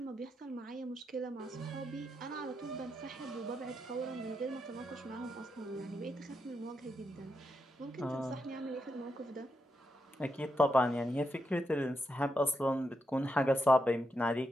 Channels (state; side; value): normal; both; correlation 0.84